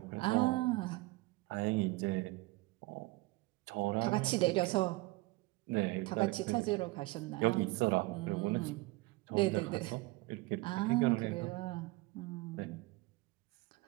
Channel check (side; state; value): left; quieter; 21.8 dB